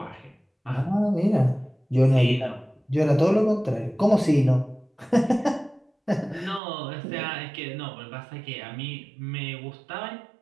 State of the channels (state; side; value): drops out; left; at 6.6 s